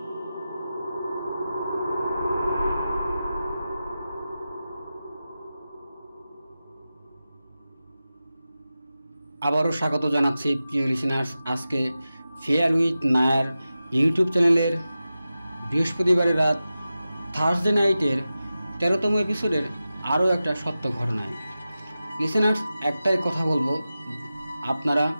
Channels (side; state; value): both; inverted; correlation -0.93